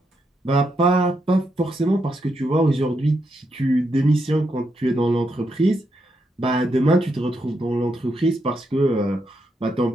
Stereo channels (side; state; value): both; normal; correlation 0.81